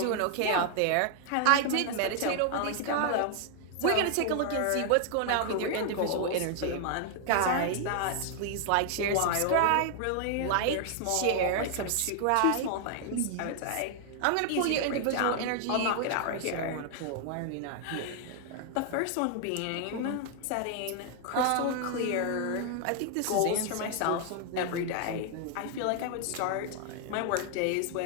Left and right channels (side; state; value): both; different; correlation 0.00